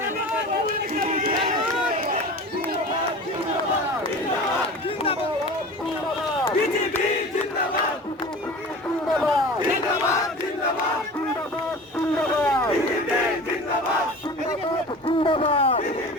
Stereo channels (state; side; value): normal; both; correlation 0.36